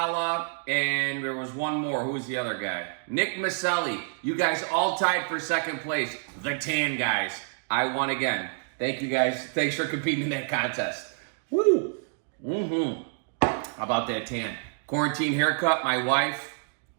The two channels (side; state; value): left; silent; digital silence